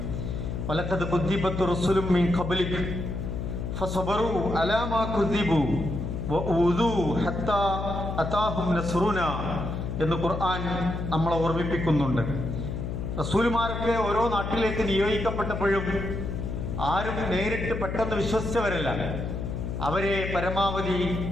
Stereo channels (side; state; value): left; noise; hum, 4 dB below the sound